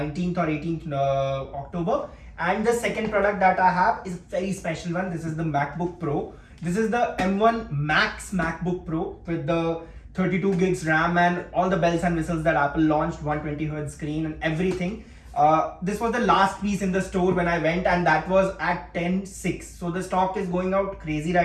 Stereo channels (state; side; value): identical; both; correlation 1.00